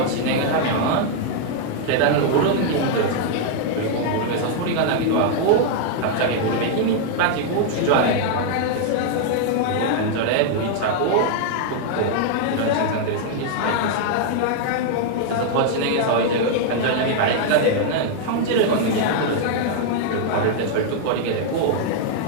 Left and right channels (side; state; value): both; different; correlation 0.00